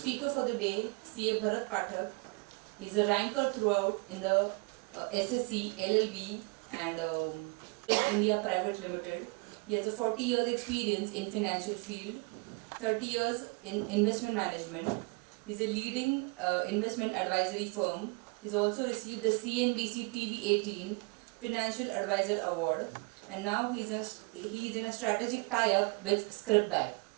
for the day, CA Bharat Phatak. He's a ranker throughout in the SSC, LLB and India Private Limited. He has a 40 years experience in financial field, 30 years in investment management. He's a leading investment advisory firm. He's also received the CNBC TV 18 Financial Advisor Award, and now he's in a strategic tie-up with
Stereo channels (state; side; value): quieter; left; 30.7 dB